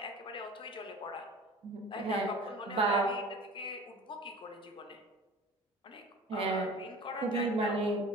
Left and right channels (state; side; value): normal; both; correlation 0.40